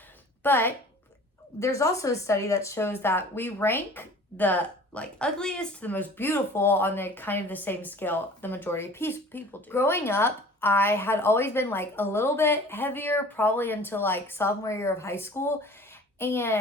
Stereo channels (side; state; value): both; normal; correlation 0.46